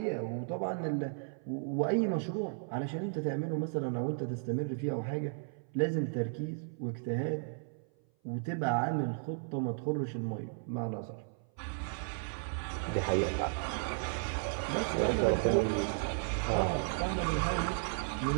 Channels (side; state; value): left; silent; 55 dB below the other